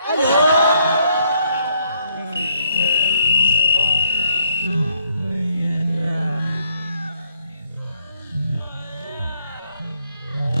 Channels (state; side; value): inverted; both; correlation -0.71